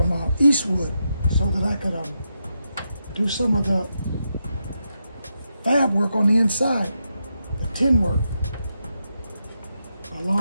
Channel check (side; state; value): both; inverted; correlation -0.85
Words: Eastwood so that I could do some of the fab work on the inside, the tin work,